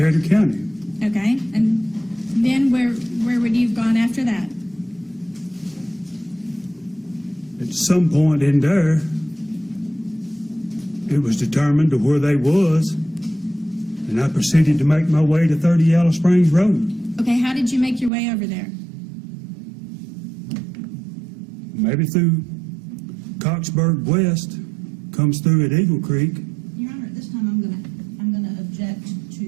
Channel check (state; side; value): drops out; left; at 18.1 s